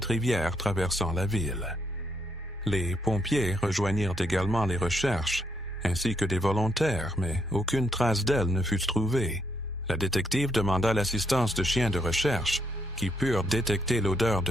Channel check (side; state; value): both; normal; correlation 0.76